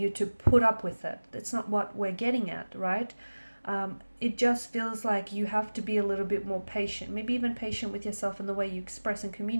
to put up with it. That's not what we're getting at, right? It just feels like you have to be a little bit more patient, maybe even patient with yourself in the way you express and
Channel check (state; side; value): inverted; both; correlation -1.00